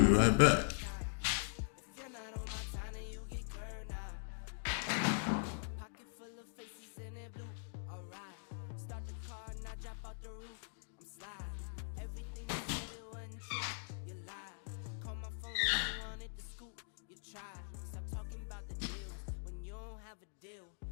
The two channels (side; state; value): right; silent; digital silence